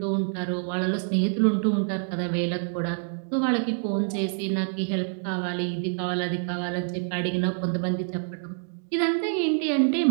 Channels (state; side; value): silent; left; digital silence